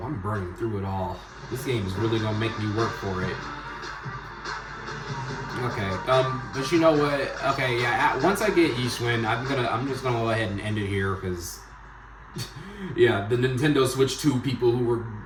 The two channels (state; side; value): identical; both; correlation 1.00